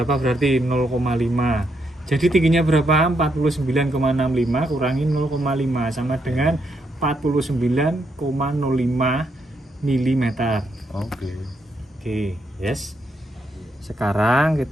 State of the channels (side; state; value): both; normal; correlation 0.78